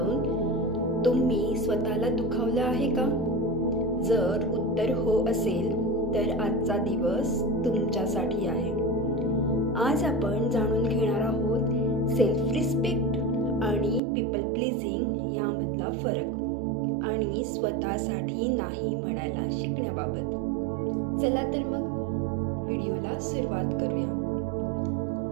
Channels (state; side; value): drops out; left; at 14.0 s